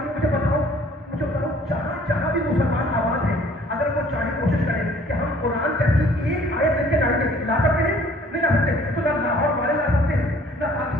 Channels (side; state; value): both; normal; correlation 0.56